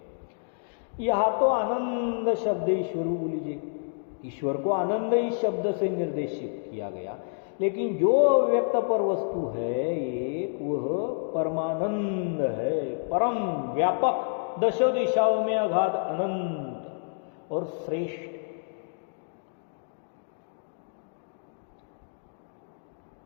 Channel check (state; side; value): silent; right; digital silence